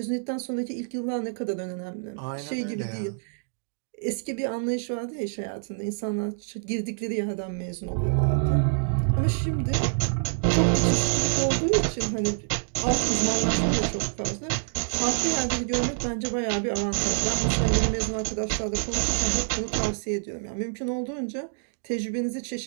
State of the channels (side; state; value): left; silent; digital silence